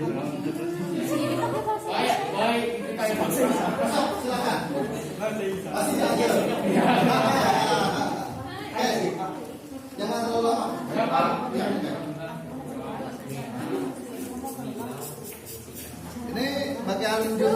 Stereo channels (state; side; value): identical; both; correlation 1.00